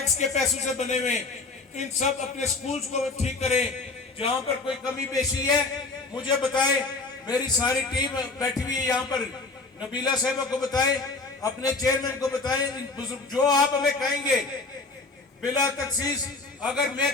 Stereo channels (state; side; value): quieter; right; 3.6 dB